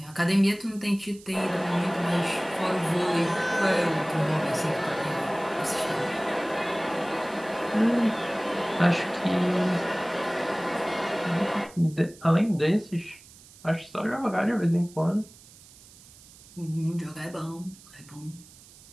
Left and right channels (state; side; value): noise; right; hiss, 22 dB below the sound